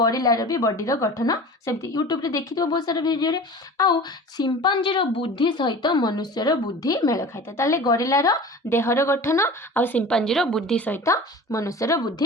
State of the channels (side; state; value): both; normal; correlation 0.38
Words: भी बॉडीर गठन सेमती यूट्यूब रे देखि तो बहुत सारा वीडियो रे आउ सिंपांजीर बुद्धि सहित मनुष्यर बुद्धि मेल खाइता ताले गरिलार देहर गठन आउ सिंपांजीर बुद्धि सहित मनुष्यर